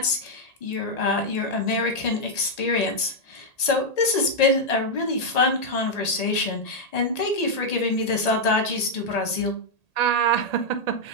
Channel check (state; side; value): late; right; 1.8 ms